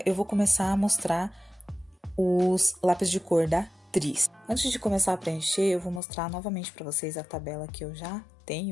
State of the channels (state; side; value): drops out; right; at 6.0 s